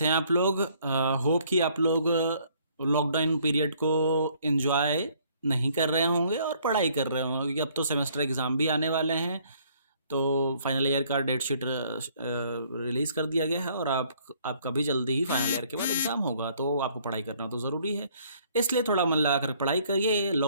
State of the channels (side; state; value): both; inverted; correlation -0.62